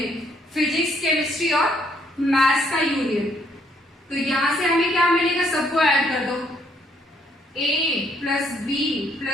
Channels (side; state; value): both; normal; correlation 0.69